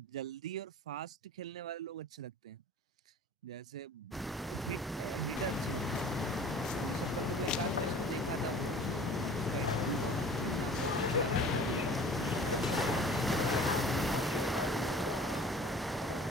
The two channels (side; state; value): both; normal; correlation 0.45